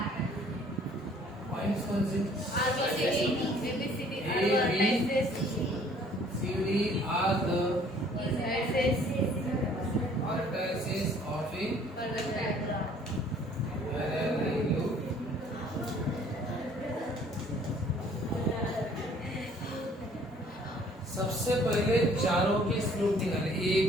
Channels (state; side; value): normal; both; correlation 0.57